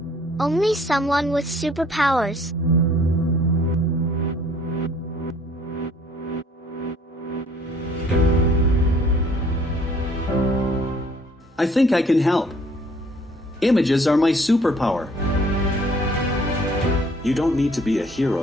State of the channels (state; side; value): normal; both; correlation 0.58